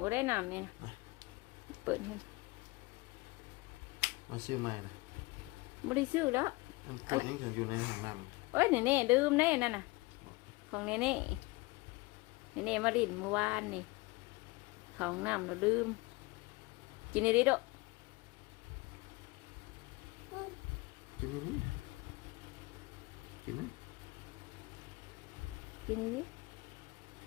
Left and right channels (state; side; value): quieter; right; 23.6 dB